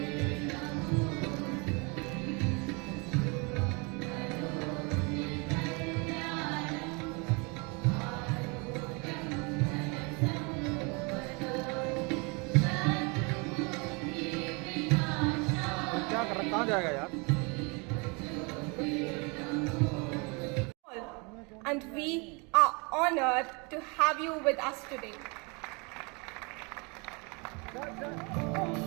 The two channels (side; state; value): left; quieter; 30.5 dB